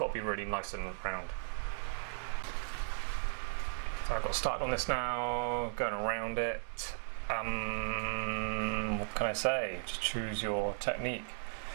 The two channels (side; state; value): left; silent; digital silence